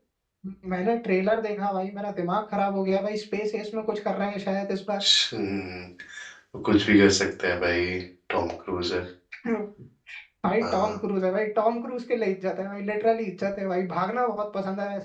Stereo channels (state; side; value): identical; both; correlation 1.00